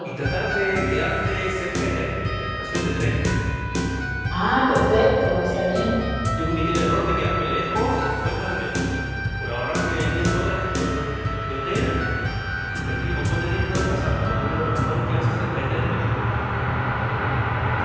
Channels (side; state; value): both; identical; correlation 1.00